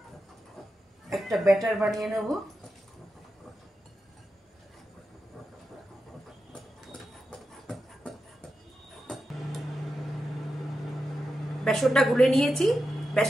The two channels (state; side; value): normal; both; correlation 0.89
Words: একটা ব্যাটার বানিয়ে নেব। বেসনটা গুলে নিয়েছি।